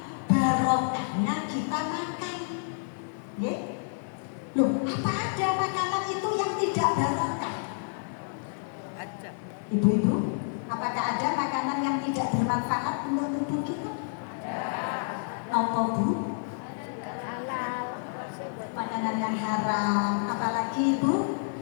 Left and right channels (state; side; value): silent; right; 59 dB below the other